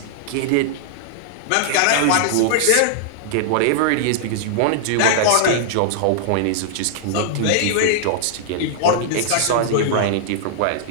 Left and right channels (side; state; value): both; different; correlation -0.01